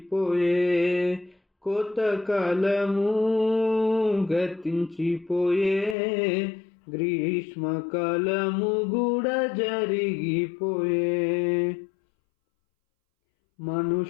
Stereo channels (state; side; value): drops out; right; at 6.0 s